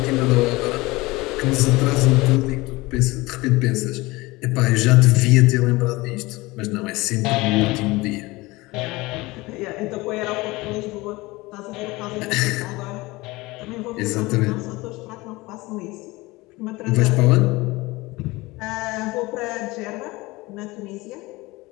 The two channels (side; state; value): right; quieter; 21.6 dB